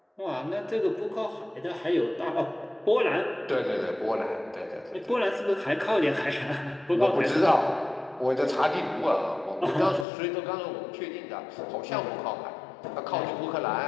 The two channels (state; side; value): drops out; right; at 10.1 s